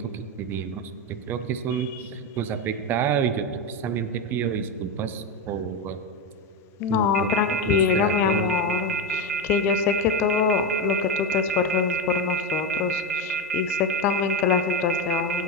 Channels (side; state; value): both; normal; correlation 0.13